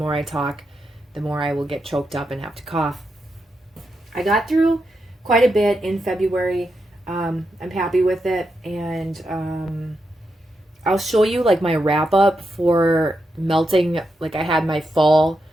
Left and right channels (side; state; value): both; normal; correlation 0.85